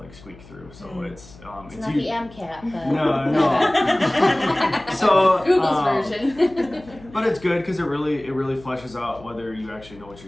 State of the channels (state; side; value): noise; left; hum, 21 dB below the sound